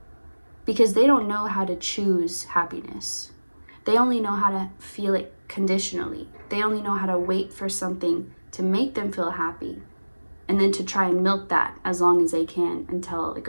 Because they don't know how to choose happiness. They only know how to feel it conditionally. They only know how to wait for something to make them feel happy, and then to try and milk that as long as they can until it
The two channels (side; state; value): both; inverted; correlation -1.00